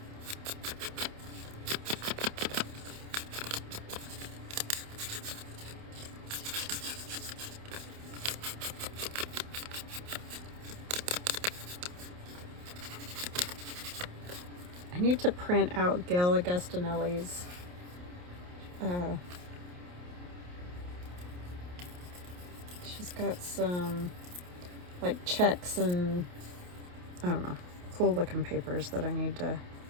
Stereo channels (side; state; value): left; late; 28 ms